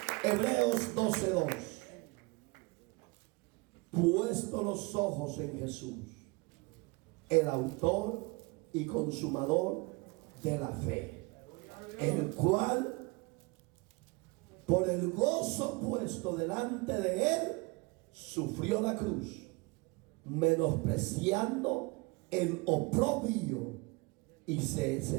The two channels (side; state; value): left; quieter; 26.9 dB